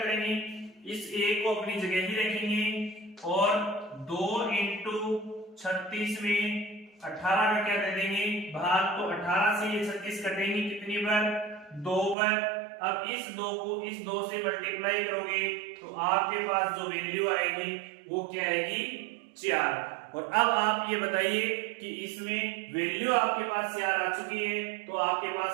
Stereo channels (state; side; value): drops out; left; at 12.2 s